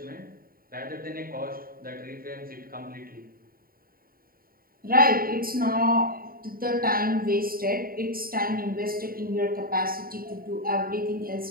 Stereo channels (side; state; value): left; late; 0.43 ms